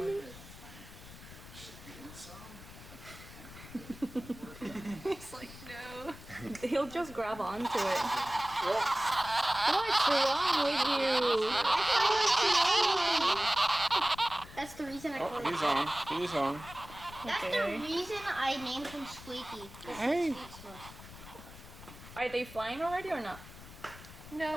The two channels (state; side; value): noise; left; rumble, 16 dB below the sound